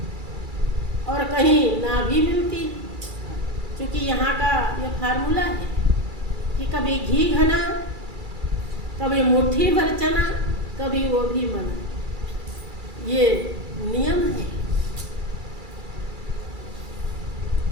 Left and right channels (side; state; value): left; late; 2.3 ms